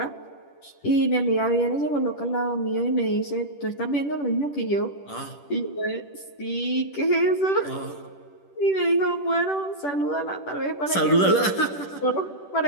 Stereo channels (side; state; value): right; late; 10 ms